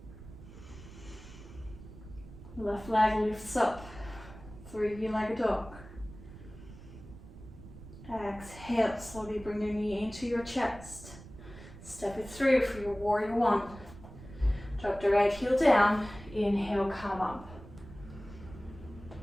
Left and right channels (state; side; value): noise; right; rumble, 16 dB below the sound